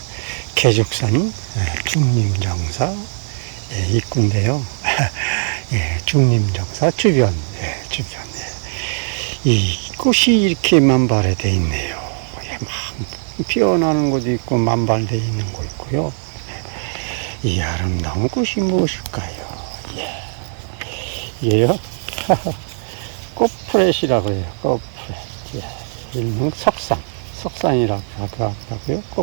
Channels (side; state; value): left; silent; 66 dB below the other